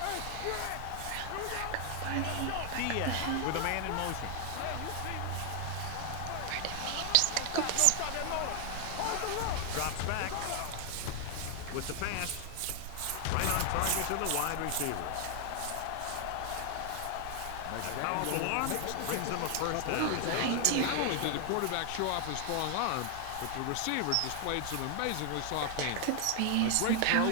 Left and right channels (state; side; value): different; both; correlation 0.00